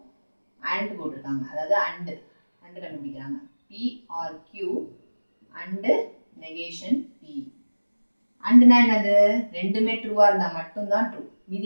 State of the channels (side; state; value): both; inverted; correlation -1.00